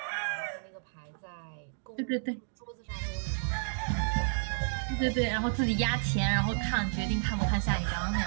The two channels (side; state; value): left; silent; digital silence